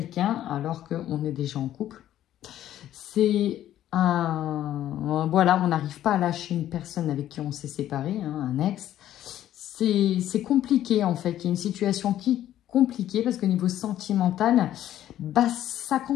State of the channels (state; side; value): quieter; right; 12.2 dB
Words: alors qu'on est déjà en couple. C'est voilà, on n'arrive pas à lâcher une personne avec qui on s'est séparé, un ex. C'est compliqué en fait, il y a une situation qui est compliquée parce qu'au niveau sentimental, ça